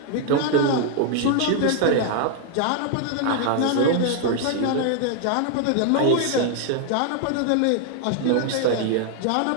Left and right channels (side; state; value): both; different; correlation 0.00